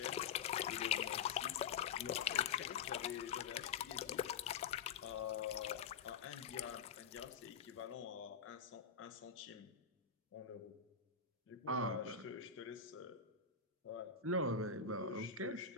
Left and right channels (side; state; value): right; quieter; 6.0 dB